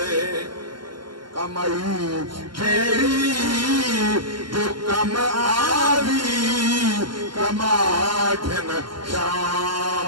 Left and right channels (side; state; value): left; late; 0.72 ms